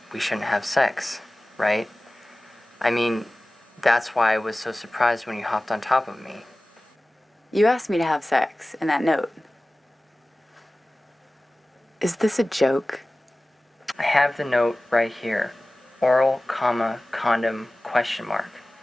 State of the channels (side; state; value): both; normal; correlation 0.97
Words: we shouldn't have sex, right? I mean, that's why I was so surprised when you hopped on top of me. You asked me to have sex in that note. Is this a joke? I have the note right here. Oral, comma, condom, question mark.